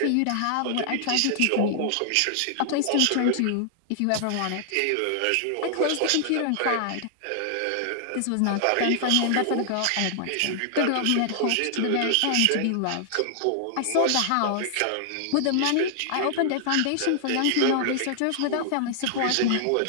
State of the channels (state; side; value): different; both; correlation -0.01